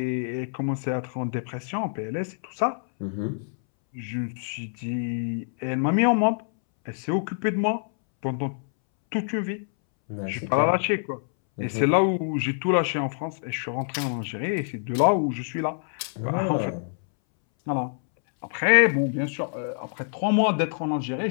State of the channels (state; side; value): silent; right; 61 dB below the other